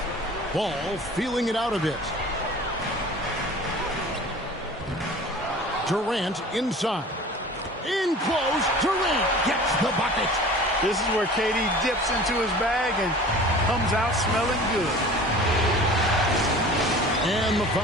Ball feeling it out a bit. Durant inside. In close. Durant gets the bucket. This is where KD dips into his bag and comes out smelling good. And the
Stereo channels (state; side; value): normal; both; correlation 0.42